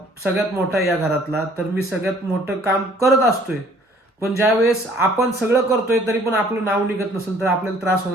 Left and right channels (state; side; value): normal; both; correlation 0.58